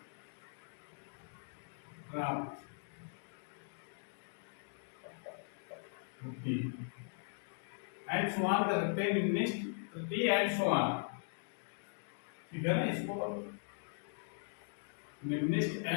प्राप्त होती एंड समान कर सकते हैं, निम्निष्ठ तृतीय एंड समान, ठीक है ना। इसको निम्निष्ठ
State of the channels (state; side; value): silent; right; digital silence